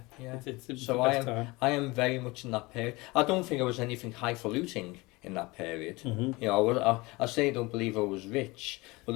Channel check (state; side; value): quieter; right; 23.1 dB